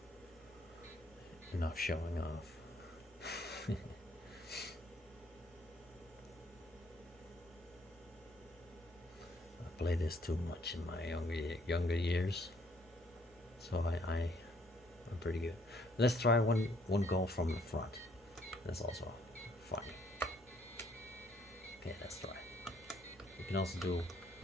Enough showing off. I played this too much in my younger years, so I'm pretty good. Let's try one goal from the front. That's also funny. Okay, let's try. You can also do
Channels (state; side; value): noise; left; hum, 29 dB below the sound